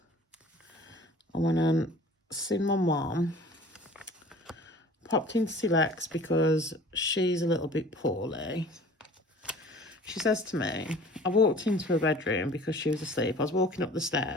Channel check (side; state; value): both; normal; correlation 0.46